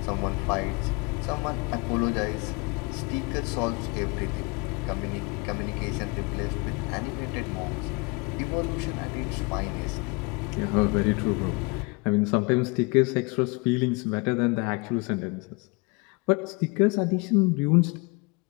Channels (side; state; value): right; quieter; 28.7 dB